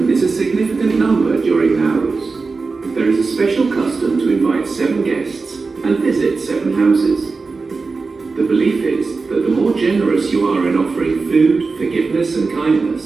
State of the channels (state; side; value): quieter; left; 4.2 dB